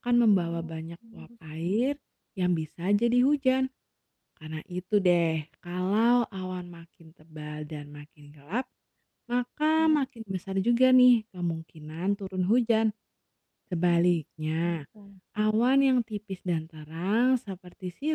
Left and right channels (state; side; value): identical; both; correlation 1.00